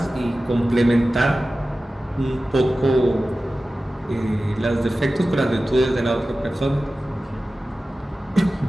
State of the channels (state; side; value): normal; both; correlation 0.95